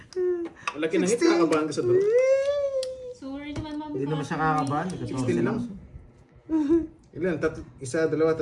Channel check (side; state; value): both; identical; correlation 1.00